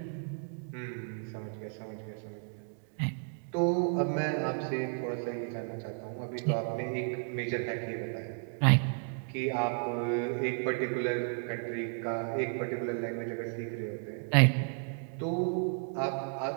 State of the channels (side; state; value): left; silent; 55 dB below the other